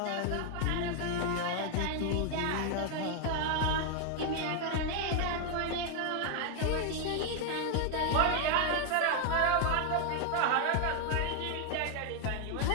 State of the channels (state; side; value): different; both; correlation 0.01